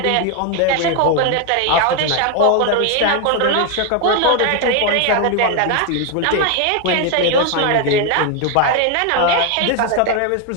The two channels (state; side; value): different; both; correlation 0.01